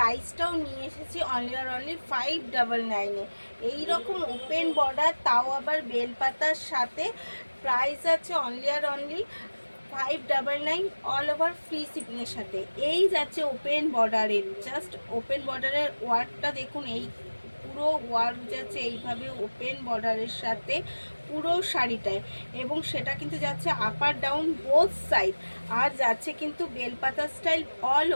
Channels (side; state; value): both; inverted; correlation -1.00